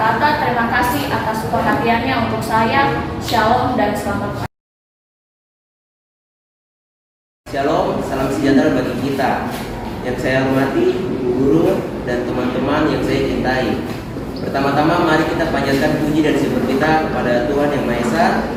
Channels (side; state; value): both; identical; correlation 1.00